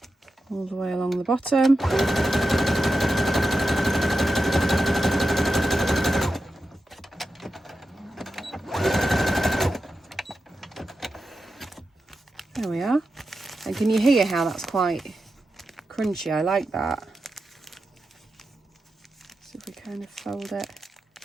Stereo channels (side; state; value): both; normal; correlation 0.90